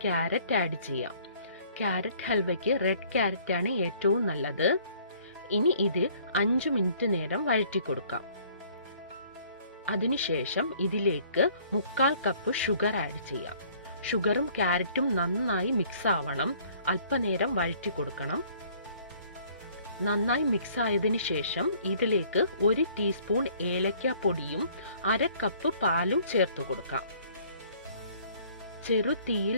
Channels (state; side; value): inverted; both; correlation -0.57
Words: ക്യാരറ്റ് ആഡ് ചെയ്യാം. ക്യാരറ്റ് ഹൽവയ്ക്ക് റെഡ് ക്യാരറ്റ് ആണ് ഏറ്റവും നല്ലത്. ഇനി ഇത് 5 മിനിറ്റ് നേരം വഴറ്റി കൊടുക്കാം. അതിനുശേഷം ഇതിലേക്ക് 1/4 കപ്പ് ഷുഗർ ആഡ് ചെയ്യാം. ഷുഗറും ക്യാരറ്റും നന്നായി മിക്സ് ആവണം. അല്പനേരം വഴറ്റി കൊടുക്കണം. നന്നായി മിക്സ് ആയതിനു ശേഷം ഇതിലേക്ക് 1 ടീസ്പൂൺ ഏലക്ക പൊടിയും 1/2 കപ്പ് പാലും ചേർത്ത് കൊടുക്കാം. ചെറു തീയിൽ